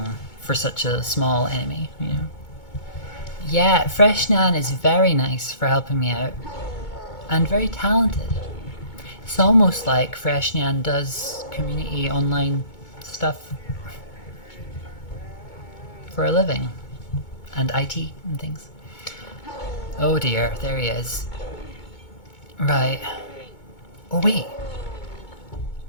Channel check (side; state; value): right; late; 2.2 ms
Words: for such a small enemy, you know. Yeah, Fresh Nan is very nice for helping me out. And very talented. It's almost like Fresh Nan does community online stuff for a living, and IT and things. Oh dear, there he is. Right. Oh wait.